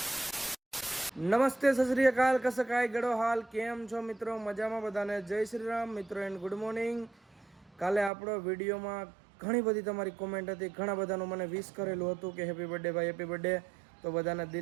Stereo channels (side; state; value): left; drops out; at 8.1 s